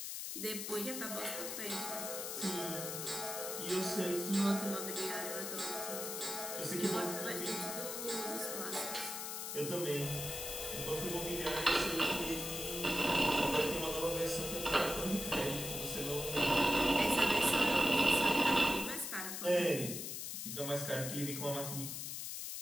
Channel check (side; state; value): left; noise; hiss, 5 dB below the sound